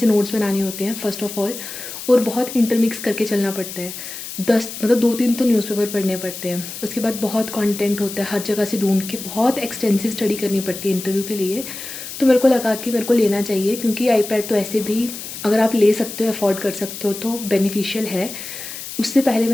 नोट्स बनाने होते हैं फर्स्ट ऑफ ऑल, और बहुत इंटरमिक्स करके चलना पड़ता है। 2-3 तो न्यूज़पेपर पढ़ने पड़ते हैं, उसके बाद बहुत कंटेंट होता है, हर जगह से ढूंढ के बहुत एक्सटेंसिव स्टडी करनी पड़ती है इंटरव्यू के लिए। तो मेरे को लगा कि मेरे को लेना चाहिए, क्योंकि आईपैड तो ऐसे भी अगर आप ले सकते हो, अफोर्ड कर सकते हो, तो बेनिफिशियल है। उससे पहले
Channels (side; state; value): left; noise; hiss, 10 dB below the sound